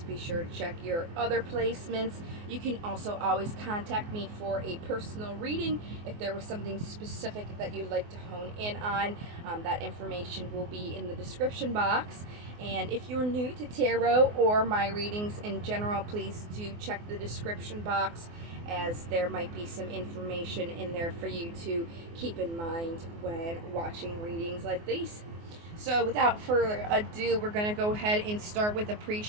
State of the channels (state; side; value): late; left; 24 ms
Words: be sure to check your other placements. You can also always contact me for a personal reading if there was something specific that you'd like to hone in on. That information will be in the description box. And if you're new to tarot or my readings in general, please do check the description box, as there might be some information in there for you to keep in mind when watching readings like these. So without further ado, we're going to go ahead and start with a